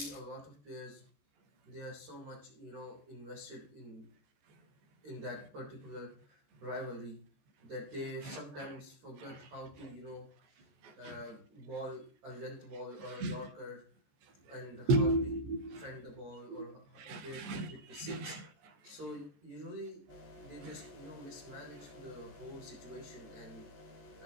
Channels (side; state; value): left; late; 14 ms